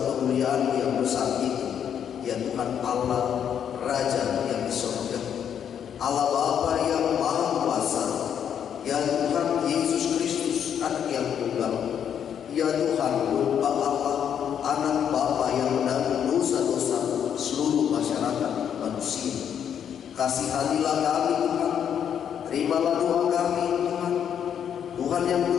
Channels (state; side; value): quieter; right; 8.6 dB